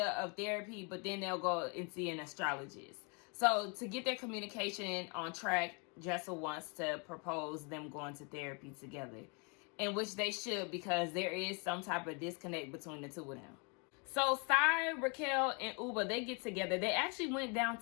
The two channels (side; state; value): right; quieter; 33.0 dB